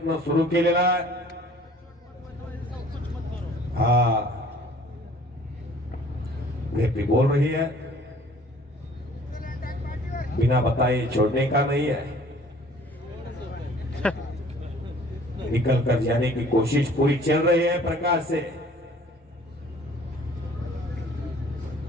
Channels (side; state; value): both; normal; correlation 0.53